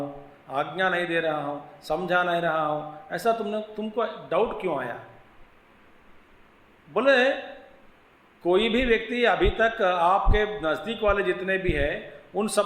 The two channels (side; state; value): both; identical; correlation 1.00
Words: आज्ञा नहीं दे रहा हूँ, समझा नहीं रहा हूँ, ऐसा तुमको डाउट क्यों आया? बोले कोई भी व्यक्ति अभी तक आपके नज़दीक वाले जितने भी हैं उन